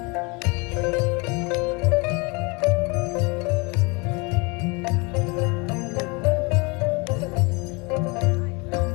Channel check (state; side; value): quieter; right; 28.9 dB